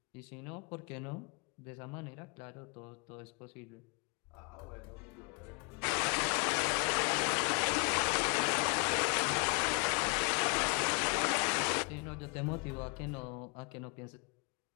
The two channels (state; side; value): quieter; right; 35.0 dB